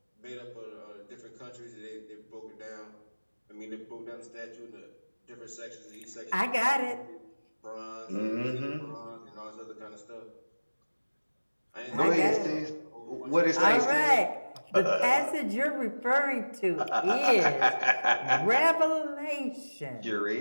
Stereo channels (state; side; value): inverted; both; correlation -1.00